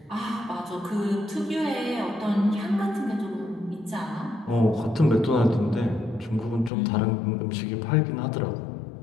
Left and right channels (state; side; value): drops out; right; at 6.7 s